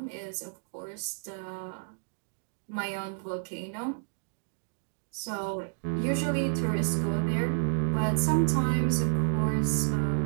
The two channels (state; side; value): silent; left; digital silence